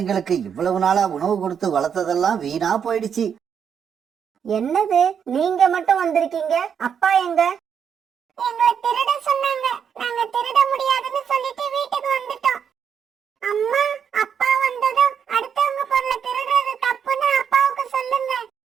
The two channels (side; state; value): left; quieter; 7.6 dB